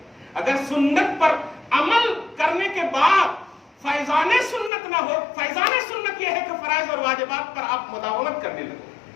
اگر سنت پر عمل کرنے کے بعد فیضان سنت نہ ہو، فیضان سنت یہ ہے کہ فرائض اور واجبات پر آپ مداومت کرنے لگو.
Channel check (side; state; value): right; drops out; at 4.7 s